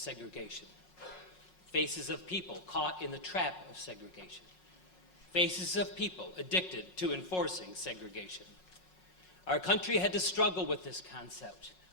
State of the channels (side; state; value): right; late; 5.5 ms